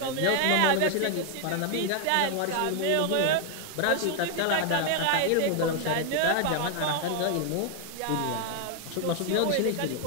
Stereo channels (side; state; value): both; different; correlation 0.00